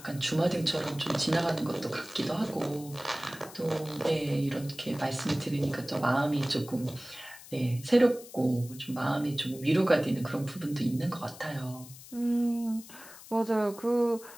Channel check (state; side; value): noise; left; hiss, 17 dB below the sound